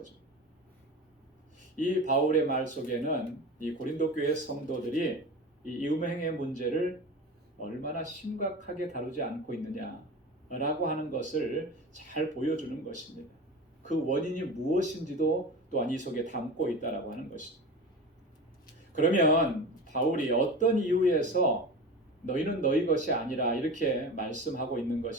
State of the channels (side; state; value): both; normal; correlation 0.30